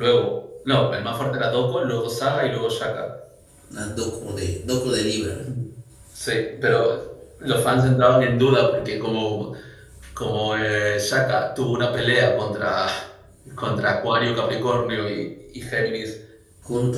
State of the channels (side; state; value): both; identical; correlation 1.00